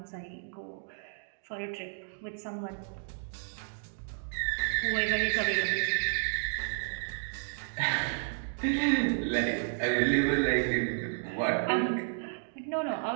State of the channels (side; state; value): left; silent; digital silence